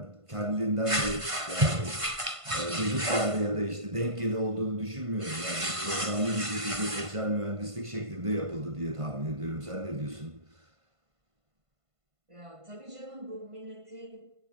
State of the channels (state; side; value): late; left; 1.5 ms